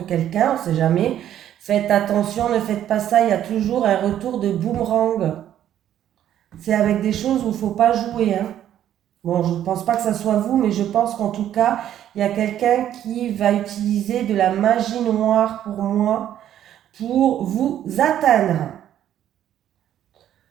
quelqu'un, on sait jamais. Faites attention, ne faites pas ça, il y a toujours un retour de boomerang. C'est avec des choses où il ne faut pas jouer, hein. Bon, je ne pense pas que ça soit vous, mais je pense qu'en tout cas, il y a quelqu'un qui va utiliser de la magie noire pour moi, pour vous atteindre.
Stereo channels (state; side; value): quieter; left; 11.1 dB